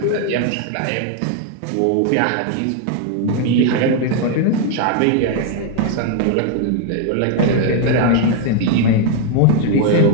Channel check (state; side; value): different; both; correlation 0.00